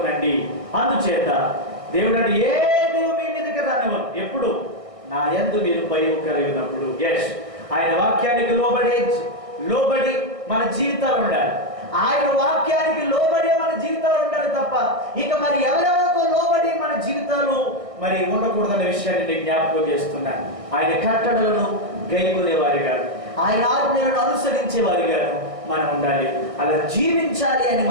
అందుచేత దేవుడు అంటే ఏది మీ మీదకి రానివ్వను. ఎప్పుడు? నా యందు మీరు భయం కలిగినప్పుడు. ఎస్, ఆయన వాక్యానికి లోబడి మన జీవితాలు ఉండాలి. ఆయన వాక్యానికి లోబడి మన జీవితాలు ఉండాలి తప్ప ఇక మరి ఎవరెవరికో లోబడి మన జీవితాలు మరి ఉండకూడదనే విషయాన్ని నేను జ్ఞాపకం చేస్తున్నాను. ఆయన కట్టడలను గైకొనేవారిగా, ఆయన ఆజ్ఞలను అనుసరించేవారిగా మనం ఉండాలి. అలా జీవించాలి అని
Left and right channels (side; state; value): left; late; 1.5 ms